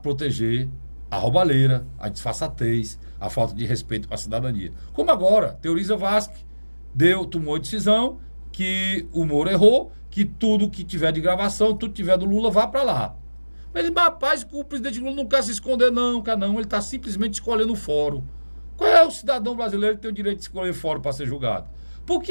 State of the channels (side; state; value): both; inverted; correlation -1.00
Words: proteger a roubalheira, a disfarçatez, a falta de respeito com a cidadania. Como agora, Teoriza Vasque tomou a decisão que o Moro errou, que tudo que tiver de gravação, tudo que tiver do Lula, vá para lá. Mas ele, rapaz, o presidente Lula não quer se esconder, não, ele está simplesmente escolhendo o fórum. Qual é o cidadão brasileiro que tem o direito de escolher fórum para ser julgado? Por